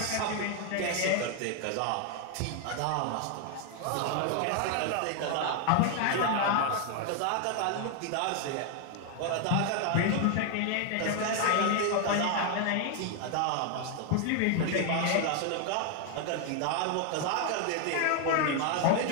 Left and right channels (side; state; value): both; different; correlation 0.00